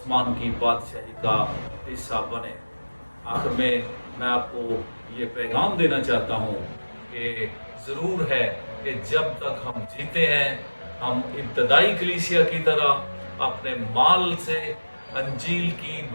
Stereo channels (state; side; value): inverted; both; correlation -1.00